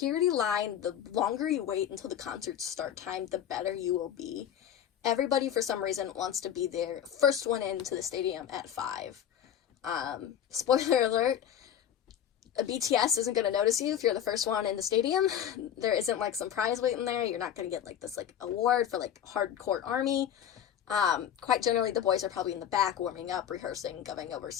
line, the longer you wait until the concert's start time, the better you will be. Everybody, for some reason, wants to be there, first one into the stadium at 5. Spoiler alert, BTS isn't going to notice you if you're the first one in the stadium. There isn't, like, some prize waiting there. You're not going to get, like, this, like, award for, like, hardcore ARMY. Quite generally, the boys are probably in the back warming up, rehearsing, going over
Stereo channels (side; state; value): right; quieter; 9.7 dB